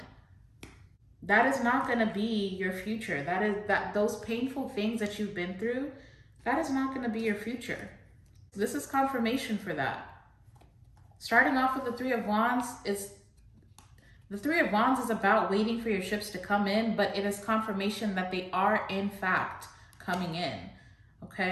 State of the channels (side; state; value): both; identical; correlation 1.00